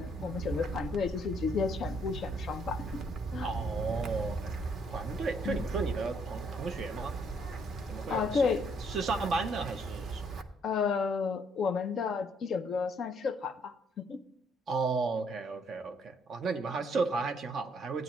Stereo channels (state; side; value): normal; both; correlation 0.68